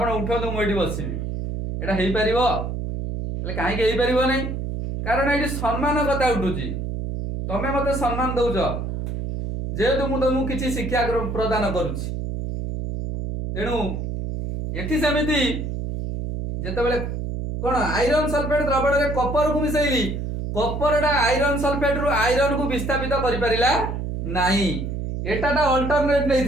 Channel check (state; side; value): noise; right; hum, 4 dB below the sound